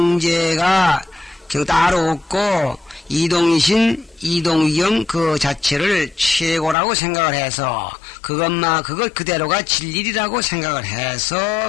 따로 없고 이동이신 이동위경 그 자체를 최고라고 생각을 해서 그것 그대로가 진리라고 생각을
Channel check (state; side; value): drops out; right; at 6.8 s